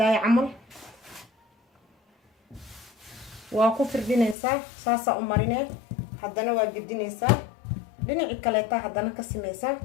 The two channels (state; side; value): drops out; right; at 4.4 s